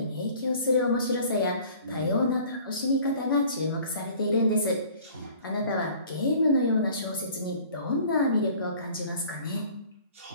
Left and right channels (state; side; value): inverted; both; correlation -0.50